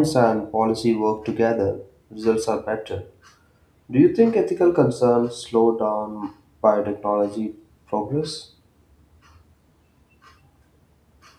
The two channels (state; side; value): identical; both; correlation 1.00